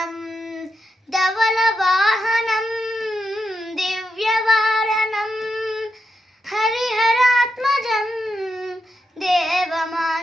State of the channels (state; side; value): normal; both; correlation 0.85